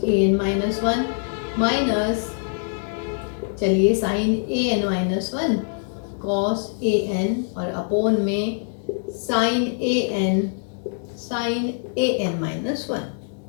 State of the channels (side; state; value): right; silent; digital silence